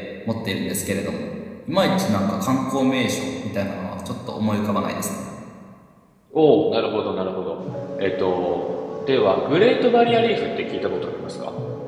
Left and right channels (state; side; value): identical; both; correlation 1.00